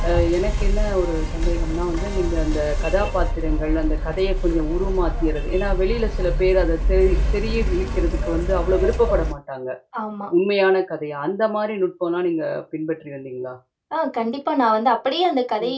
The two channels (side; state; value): both; identical; correlation 1.00